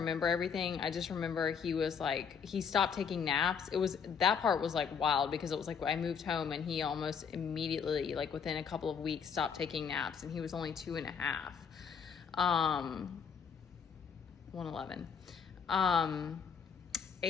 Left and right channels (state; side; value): quieter; right; 6.8 dB